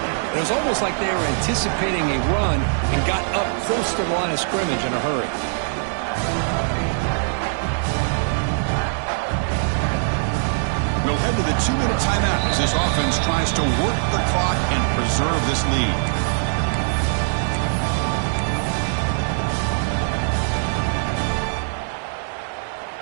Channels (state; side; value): silent; left; digital silence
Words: It was almost like they were anticipating a run and got up close to the line of scrimmage in a hurry. We'll head to the 2-minute timeout as this offense tries to work the clock and preserve this lead.